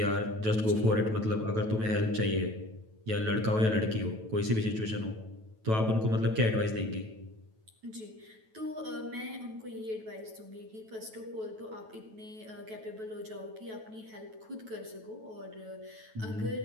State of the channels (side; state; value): left; late; 9.2 ms